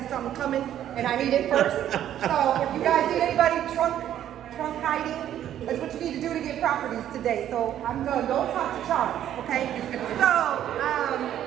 something coming and I need it first. So if you guys need anybody trunk hiding, that's what you need to do to get properties today. So I'm going to go talk to Charles, okay? So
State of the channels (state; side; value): quieter; left; 11.1 dB